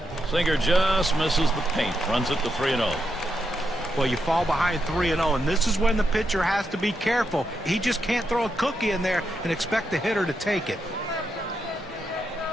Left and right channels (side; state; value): both; normal; correlation 0.83